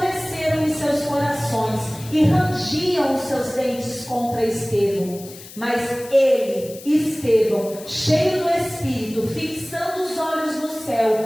em seus corações e rangiam os seus dentes contra Estevão. Mas ele, Estevão, cheio do Espírito, fixando os olhos no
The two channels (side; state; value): left; noise; hiss, 17 dB below the sound